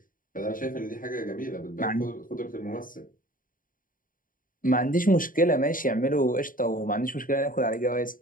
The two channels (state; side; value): late; right; 0.40 ms